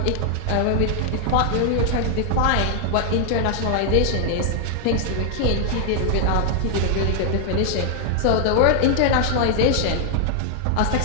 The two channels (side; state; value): both; different; correlation 0.00